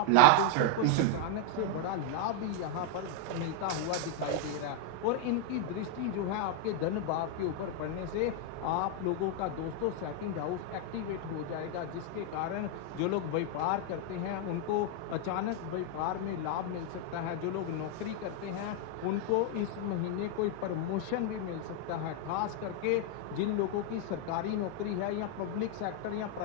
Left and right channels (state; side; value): different; both; correlation 0.00